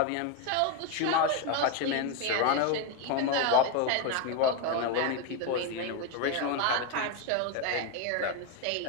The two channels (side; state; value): both; different; correlation 0.02